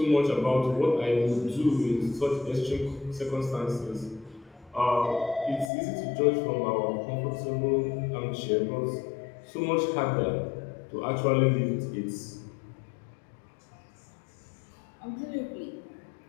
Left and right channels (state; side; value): drops out; right; at 5.7 s